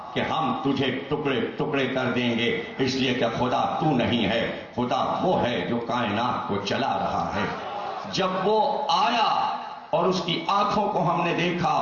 کہ ہم تجھے ٹکڑے ٹکڑے کر دیں گے، اس لیے کہ خدا تو نہیں ہے، خدا وہ ہے جو کائنات کو چلا رہا ہے۔ جب وہ آیا اور اس کی آنکھوں کو ہم نے دیکھا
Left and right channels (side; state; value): both; identical; correlation 1.00